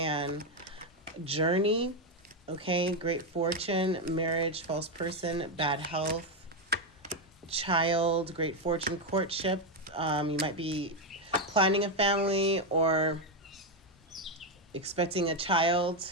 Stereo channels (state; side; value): normal; both; correlation 0.06